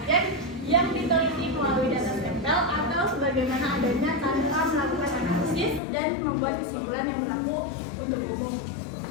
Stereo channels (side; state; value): right; drops out; at 5.8 s